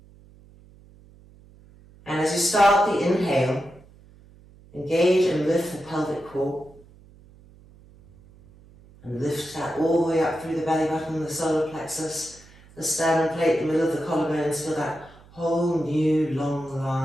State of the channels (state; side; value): noise; right; hum, 25 dB below the sound